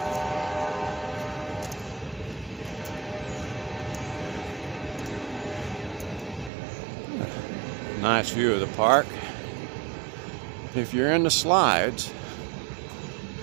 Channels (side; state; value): left; drops out; at 6.5 s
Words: Nice view of the park. If you're in the slides,